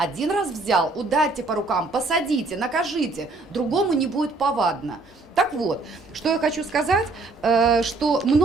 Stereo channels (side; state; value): left; quieter; 3.5 dB